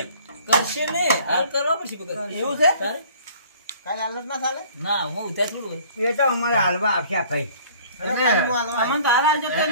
કરશે ને હાલ કરવા પછી પકડ. એવું છે તારે? કાલે હાલત ના ચાલે. ના હું ઉતાર થોડું હોય. એ તો અમારે હાલવા આપ્યા ભાઈ અરે કાલે હું હાલવા અમને તો હાલ આવજો તો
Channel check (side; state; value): both; inverted; correlation -0.52